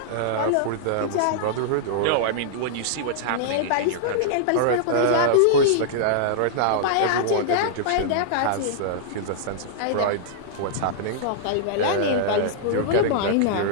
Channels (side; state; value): both; different; correlation -0.02